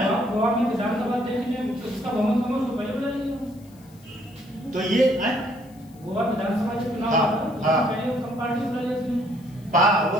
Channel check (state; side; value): noise; left; hiss, 28 dB below the sound